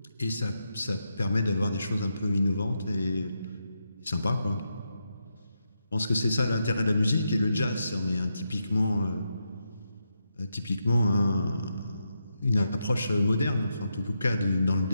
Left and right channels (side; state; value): both; inverted; correlation -0.84